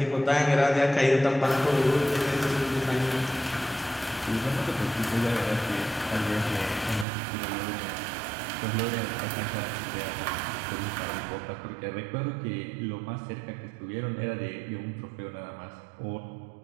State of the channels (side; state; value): left; drops out; at 7.1 s